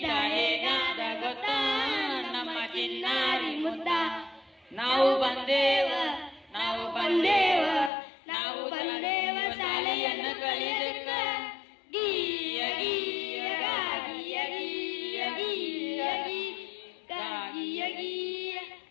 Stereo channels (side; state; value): right; drops out; at 7.9 s